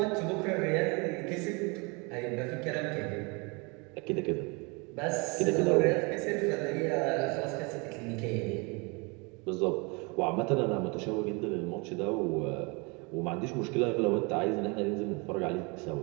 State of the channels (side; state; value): left; quieter; 29.7 dB